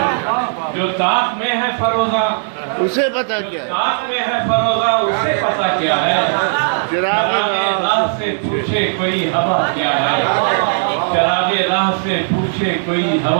جو تاب میں ہے فروغہ اسے پتا کیا ہے تاب میں ہے فروغہ اسے پتا کیا ہے چراغ راہ سے پوچھے کوئی ہوا کیا ہے چراغ راہ سے پوچھے کوئی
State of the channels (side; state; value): left; silent; digital silence